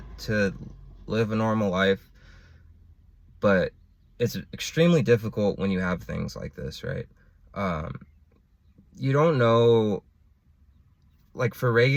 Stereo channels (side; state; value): both; identical; correlation 1.00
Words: live a normal life, but it's extremely difficult when you have things like this, right? Um, you don't know, like for